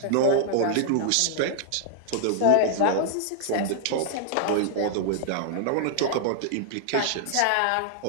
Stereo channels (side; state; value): both; different; correlation -0.01